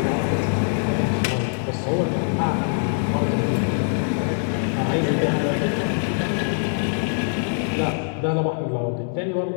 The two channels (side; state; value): right; silent; 63 dB below the other